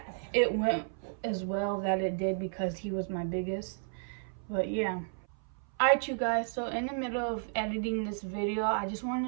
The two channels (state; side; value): silent; left; 56 dB below the other